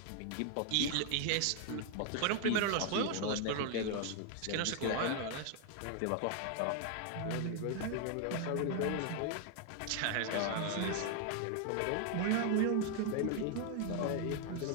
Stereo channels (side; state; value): both; different; correlation 0.00